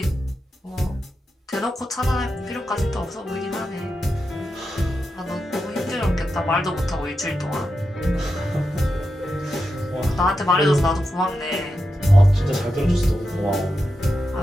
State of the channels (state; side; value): normal; both; correlation 0.88